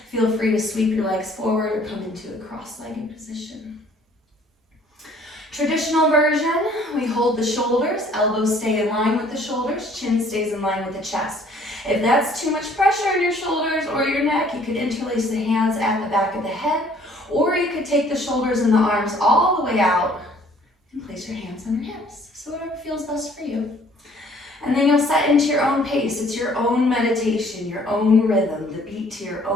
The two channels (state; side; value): normal; both; correlation 0.58